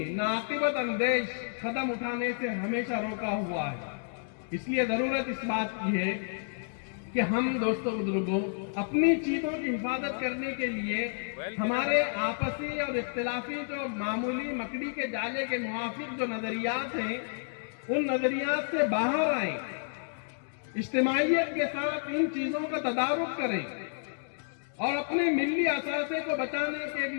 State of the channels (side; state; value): right; silent; digital silence